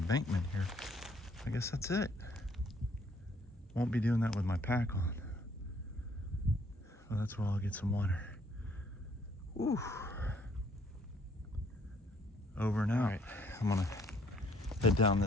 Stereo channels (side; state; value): both; normal; correlation 0.65